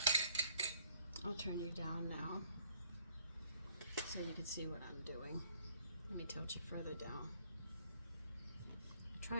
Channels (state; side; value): inverted; both; correlation -0.61